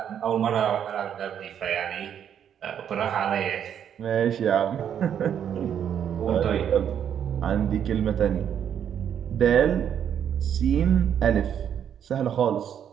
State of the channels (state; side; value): quieter; left; 9.0 dB